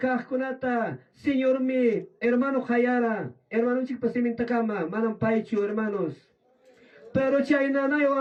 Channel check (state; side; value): identical; both; correlation 1.00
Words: Señor mi, hermano hayara, hermano chik pasimin takama, manam paichu, hermanos. Pero chayna na